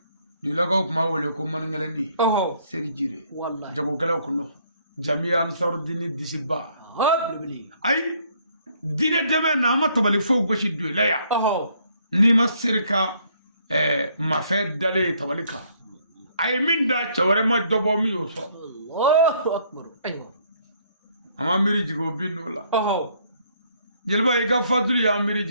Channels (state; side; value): inverted; both; correlation -0.66